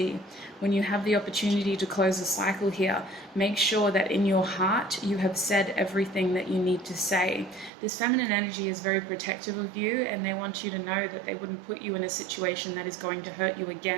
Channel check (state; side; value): drops out; left; at 7.7 s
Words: When you have the opportunity to close a cycle here, make sure that in your heart you have said everything that you need to say. This feminine energy is very protective of you, and they want you to know that they wouldn't put you in a situation that is going to hurt you